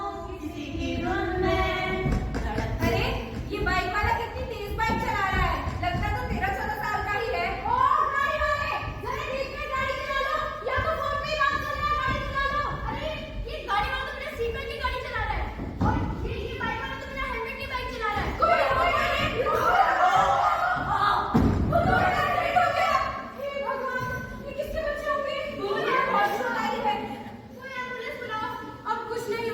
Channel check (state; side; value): identical; both; correlation 1.00